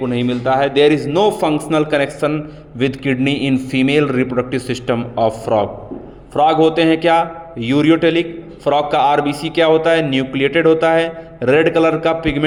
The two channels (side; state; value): both; identical; correlation 1.00